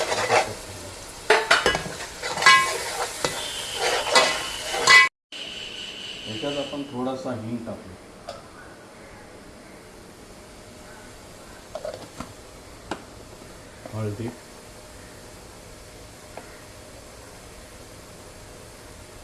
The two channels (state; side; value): identical; both; correlation 1.00